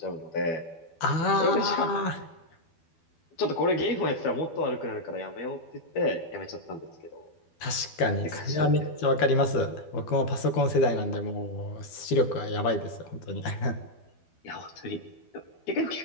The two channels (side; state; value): right; late; 12 ms